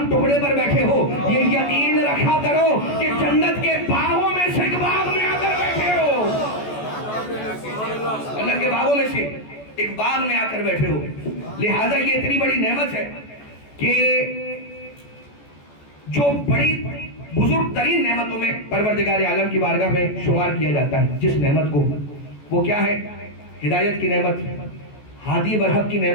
ٹکڑے پر بیٹھے ہو, یہ یقین رکھا کرو کہ جنت کے باغوں میں سے ایک باغ میں آ کر بیٹھے ہو, اللہ کے باغوں میں سے ایک باغ میں آ کر بیٹھے ہو. لہذا یہ اتنی بڑی نعمت ہے کہ جو بڑی بزرگ ترین نعمتوں میں پروردگار عالم کی بارگاہ میں شمار کیا جاتا ہے. جس نعمت کو, وہ کیا ہے؟ ہدایت کی نعمت, ہادی برحق کی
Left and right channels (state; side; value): late; right; 14 ms